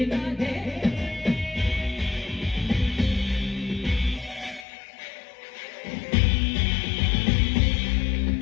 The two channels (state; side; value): drops out; right; at 4.7 s